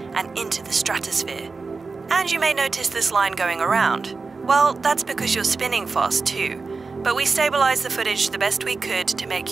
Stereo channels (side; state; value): left; quieter; 4.3 dB